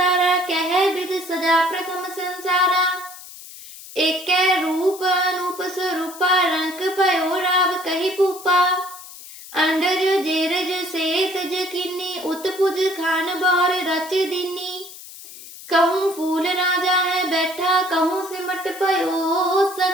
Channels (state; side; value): noise; left; hiss, 16 dB below the sound